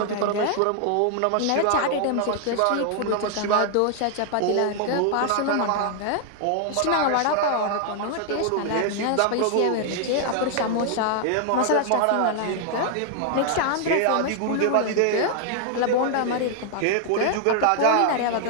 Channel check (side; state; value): both; different; correlation 0.00